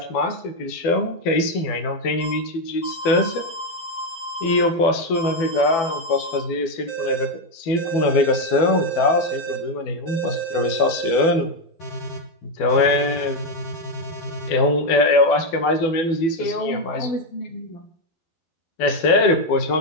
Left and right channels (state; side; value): late; right; 12 ms